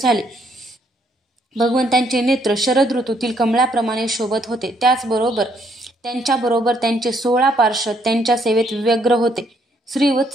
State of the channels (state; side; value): normal; both; correlation 0.70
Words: भगवंतांचे नेत्र शरद ऋतूतील कमळाप्रमाणे शोभत होते. त्याचबरोबर त्यांच्याबरोबर त्यांचे 16 पार्षद त्यांच्या सेवेत व्यग्र होते.